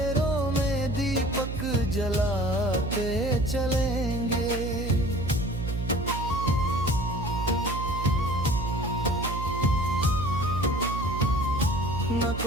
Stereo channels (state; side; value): noise; right; hum, 4 dB below the sound